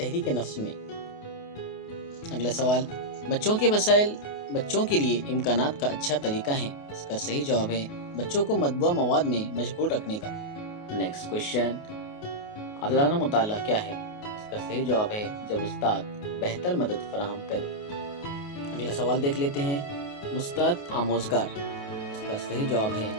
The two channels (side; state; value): right; late; 28 ms